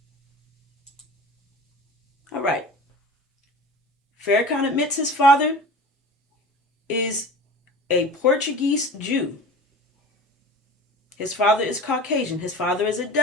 All right. Farrakhan admits his father is a Portuguese Jew. His father is Caucasian. His father is a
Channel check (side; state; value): both; normal; correlation 0.37